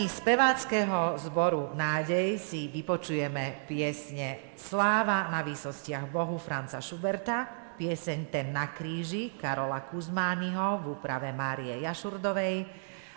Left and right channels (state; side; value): silent; left; digital silence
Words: speváckeho zboru Nádej si vypočujeme piesne Sláva na výsostiach Bohu Franca Schuberta, pieseň Ten na kríži Karola Kuzmányho v úprave Márie Jašurdovej